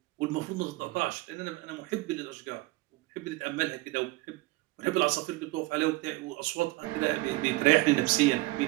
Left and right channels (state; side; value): quieter; left; 20.8 dB